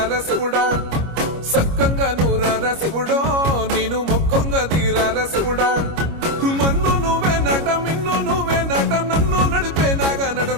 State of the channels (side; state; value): left; late; 25 ms